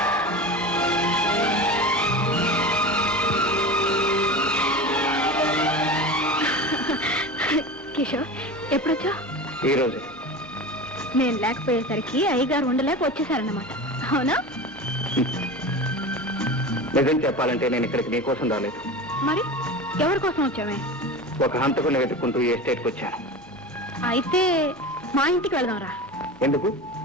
కిషోర్ ఎప్పుడొచ్చా? ఈ రోజు నేను లేకపోయేసరికి అయ్యగారు ఉండలేక వచ్చేసారన్నమాట. అవునా? నిజం చెప్పాలంటే నేను ఇక్కడికి నీకోసం రాలేదు. మరి ఎవరి కోసం వచ్చామే? ఒక హంతకుని వెతుక్కుంటూ ఈ ఎస్టేట్కి వచ్చాను. అయితే మా ఇంటికి వెళదాంరా. ఎందుకు?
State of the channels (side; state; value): both; normal; correlation 0.30